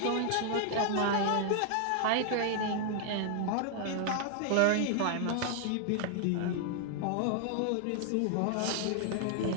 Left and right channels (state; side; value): different; both; correlation 0.00